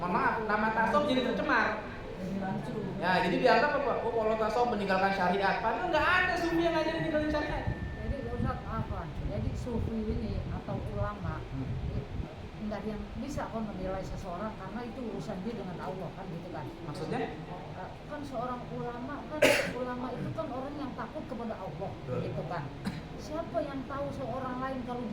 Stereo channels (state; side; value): identical; both; correlation 1.00